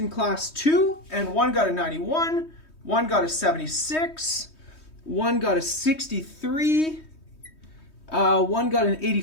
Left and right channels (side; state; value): right; late; 3.2 ms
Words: class 2, and one got a 91, one got a 76, one got a 63, one got an